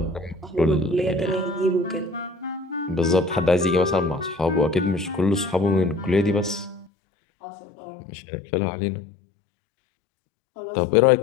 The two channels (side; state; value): right; drops out; at 6.9 s